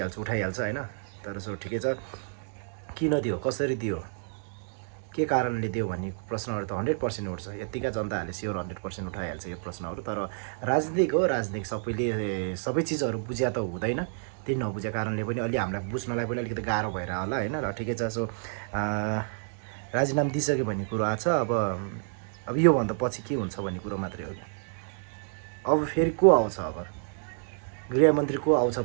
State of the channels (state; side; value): silent; left; digital silence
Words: उठाइहाल्छ होइन। तर सो ठिकै छ, किन दियो, कसरी दियो, के कारणले दियो भन्ने प्रश्नहरू त 100% उठ्छ। यतिका जनताहरूले स्योर 100% उठाइहाल्छ यो प्रश्नहरू। तर राजनीतिक हो, राजनीतिक सबैले सबै चिजहरू बुझ्या त हुँदैन। त्यही नबुझेको कारणले पनि अलि हामीलाई बुझ्नलाई पनि अलिकति गाह्रो भएर होला होइन। र ठिकै छ। सो राजीनामा दिइसक्यो भन्ने कुरो आएको छ। अब योभन्दा पछि के हुन्छ भन्ने कुरो मात्रै हो। अब फेरि को आउँछ, अब गृहमन्त्री को आउँछ